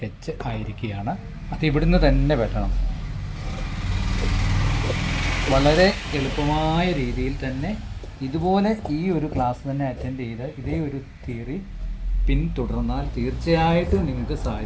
ആയിരിക്കുകയാണ്. അത് ഇവിടുന്ന് തന്നെ വെട്ടണം. വളരെ എളുപ്പമായ രീതിയിൽ തന്നെ ഇതുപോലെ ഈ ഒരു ക്ലാസ് തന്നെ അറ്റൻഡ് ചെയ്ത് ഇതേ ഒരു തിയറി പിന്തുടർന്നാൽ തീർച്ചയായിട്ടും നിങ്ങൾക്ക്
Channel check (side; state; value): both; identical; correlation 1.00